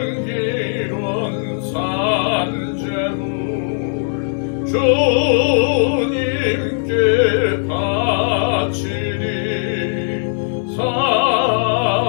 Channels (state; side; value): silent; right; digital silence